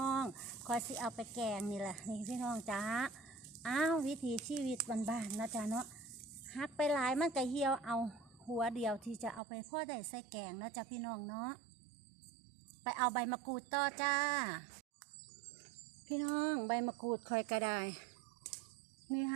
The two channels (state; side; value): drops out; left; at 9.4 s